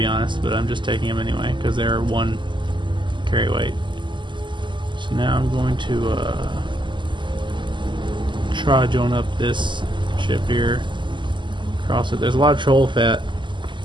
honest, but I'm just taking them anyway because they're 1 carry weight. So now I'm going to trudge on up this ship here, cross it. There's a lot of troll fat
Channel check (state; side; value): late; left; 0.23 ms